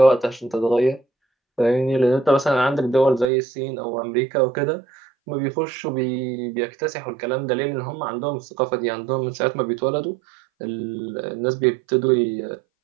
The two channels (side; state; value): left; drops out; at 3.3 s